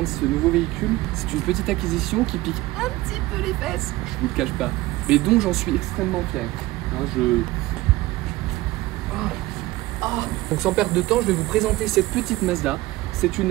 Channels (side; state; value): left; quieter; 18.4 dB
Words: ce nouveau véhicule. C'est une petite acquisition qui pique un petit peu les fesses, je vous le cache pas, mais dont j'en suis extrêmement fier. Donc sans perdre de temps, je vais vous présenter cette petite Mazda. C'est